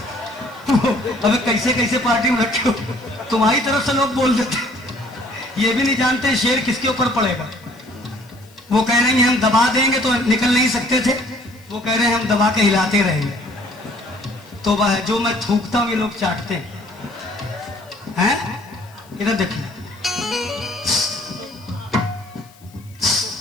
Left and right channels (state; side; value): noise; left; hiss, 27 dB below the sound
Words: अबे कैसे कैसे पार्टी में रखे हो, तुम्हारी तरफ से लोग बोल देते, ये भी नहीं जानते शेर किसके ऊपर पड़ेगा। वो कह रहे हैं हम दबा देंगे तो निकल नहीं सकते थे, वो कह रहे हैं हम दबा के हिलाते रहेंगे। तो वह जो मैं थूकता हूं ये लोग चाटते हैं। इधर देखिए।